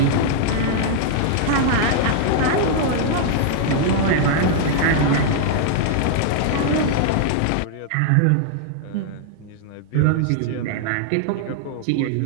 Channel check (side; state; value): both; different; correlation -0.01